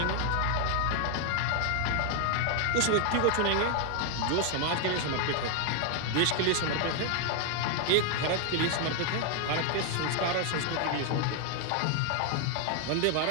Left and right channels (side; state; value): both; different; correlation 0.00